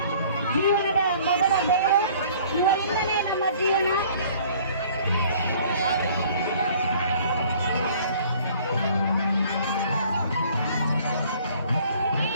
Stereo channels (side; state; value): both; inverted; correlation -0.54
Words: ಜೀವನದ ಮೊದಲ ಬೆಳಕು, ಇವರಿಂದಲೇ ನಮ್ಮ ಜೀವನ.